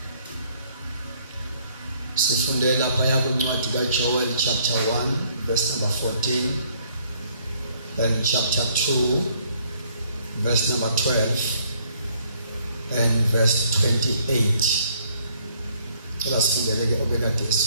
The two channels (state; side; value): inverted; both; correlation -0.65